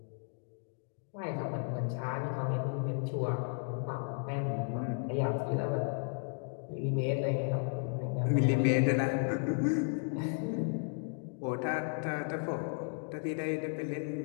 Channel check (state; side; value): silent; right; 55 dB below the other